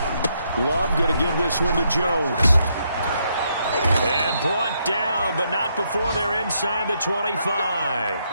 Love going to give this one to Jones. And brought down, but not before they're inside the 25.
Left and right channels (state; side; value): inverted; both; correlation -0.76